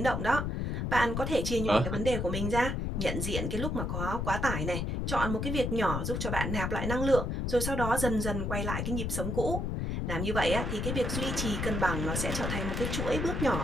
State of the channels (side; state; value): left; noise; rumble, 1 dB below the sound